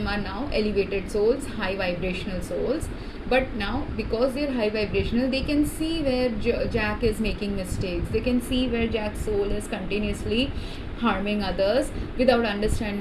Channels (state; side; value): identical; both; correlation 1.00